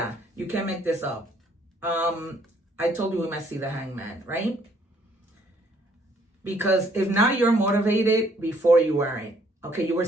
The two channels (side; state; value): both; normal; correlation 0.65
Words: you can't make this up. I told you we might see the Hangman, right? Because if not, you're motivated, before you weren't. Okay, you were